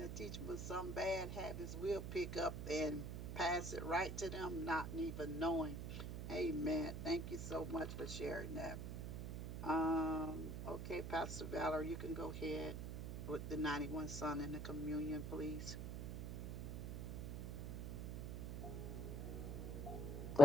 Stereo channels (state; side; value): noise; right; hum, 5 dB below the sound